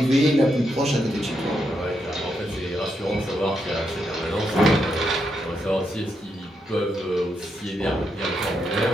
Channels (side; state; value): both; normal; correlation 0.81